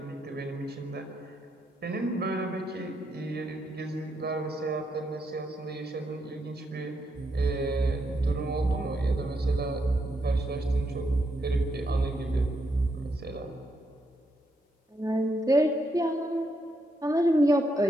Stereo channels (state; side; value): normal; both; correlation 0.80